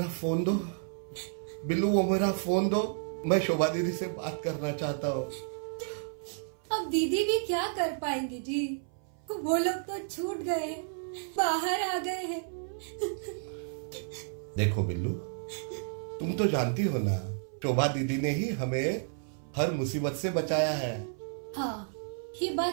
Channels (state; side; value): silent; left; 56 dB below the other